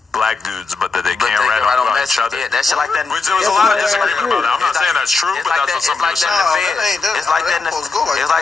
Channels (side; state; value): right; quieter; 4.2 dB